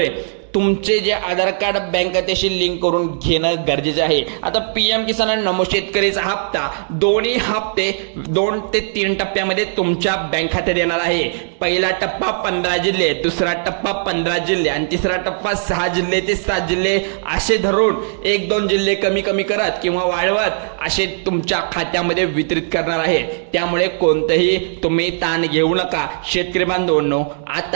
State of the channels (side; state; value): left; silent; 65 dB below the other